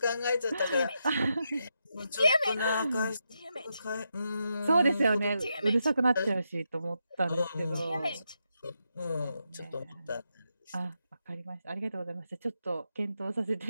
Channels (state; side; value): inverted; both; correlation -0.84